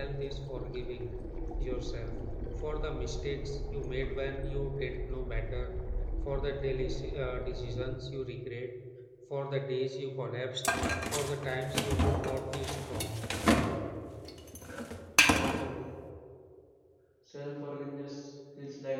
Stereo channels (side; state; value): both; identical; correlation 1.00